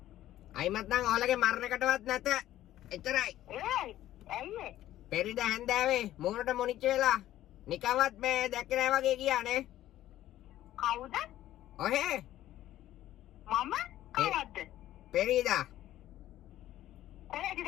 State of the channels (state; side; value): quieter; right; 13.6 dB